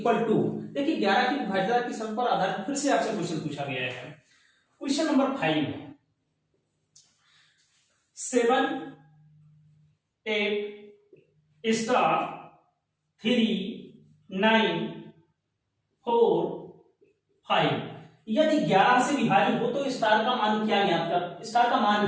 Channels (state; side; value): identical; both; correlation 1.00